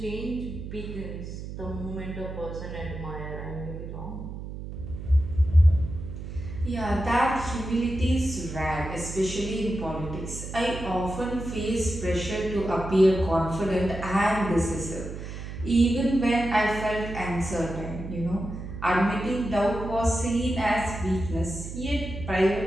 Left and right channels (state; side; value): noise; right; hum, 9 dB below the sound